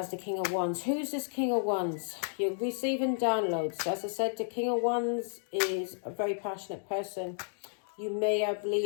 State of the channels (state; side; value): silent; right; digital silence